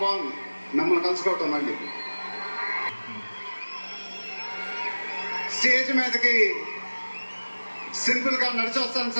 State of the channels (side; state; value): both; inverted; correlation -1.00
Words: బాగుంది మిమ్మల్ని కలుసుకోవటం. మళ్ళీ స్టేజ్ మీదకి సింపుల్ గా నడిచి వస్తాను